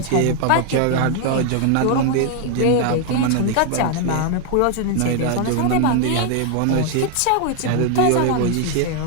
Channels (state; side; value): different; both; correlation 0.00